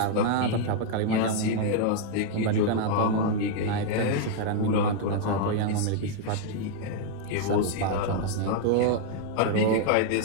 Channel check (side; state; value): both; different; correlation -0.01